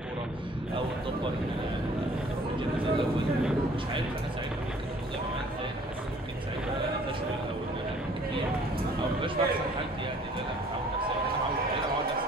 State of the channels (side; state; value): both; normal; correlation 0.55